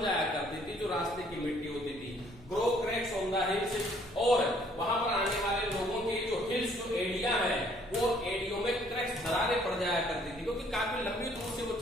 जाया करती थी, जो रास्ते की मिट्टी होती थी। Grow cracks on the hills, और वहां पर आने वाले लोगों के जो हिल्स, जो एडिया है, वो एडियो में क्रैक्स, दरारें पड़ जाया करती थी, क्योंकि काफी लंबी दूर से वो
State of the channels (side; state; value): right; noise; rumble, 22 dB below the sound